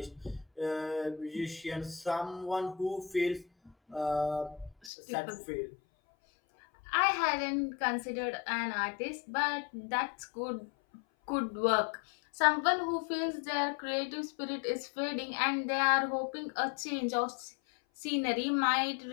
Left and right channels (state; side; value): drops out; right; at 4.9 s